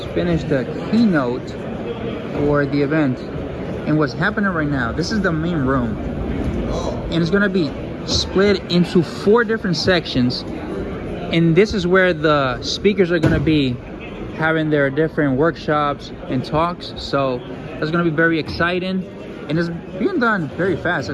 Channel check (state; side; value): identical; both; correlation 1.00